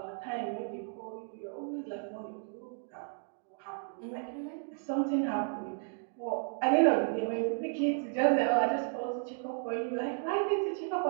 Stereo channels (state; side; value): silent; left; 55 dB below the other